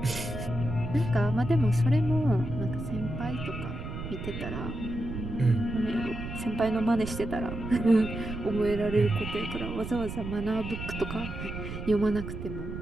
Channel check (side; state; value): right; noise; rumble, 7 dB below the sound